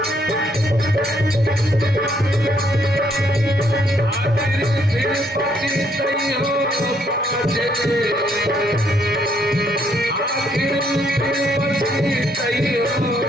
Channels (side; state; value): both; normal; correlation 0.70